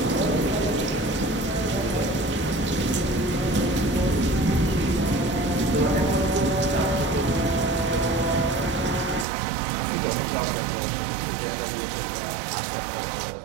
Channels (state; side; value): drops out; left; at 9.2 s